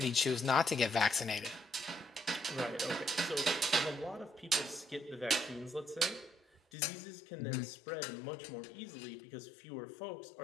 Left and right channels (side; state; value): right; drops out; at 6.6 s